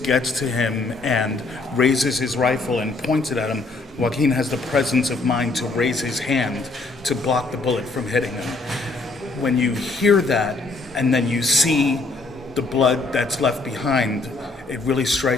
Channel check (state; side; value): quieter; right; 3.5 dB